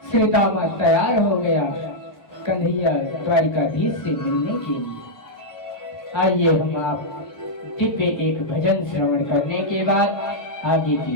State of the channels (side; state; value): right; late; 1.5 ms